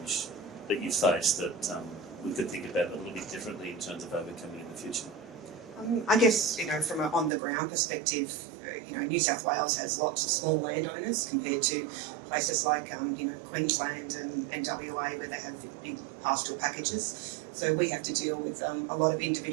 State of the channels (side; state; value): left; drops out; at 7.3 s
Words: that you face that we could think about a little bit differently in terms of overcoming in the future? I guess, from an on-the-ground perspective, New South Wales has lots of small landowners compared to places like, Queensland and WA where they have big pastoral packages. So we have to deal with a lot of